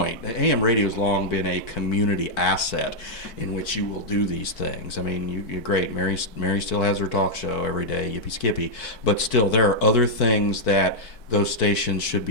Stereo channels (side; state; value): right; late; 4.5 ms